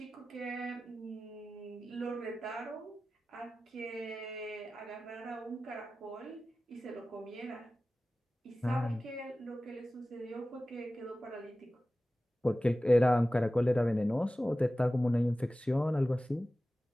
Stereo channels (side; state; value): both; normal; correlation 0.96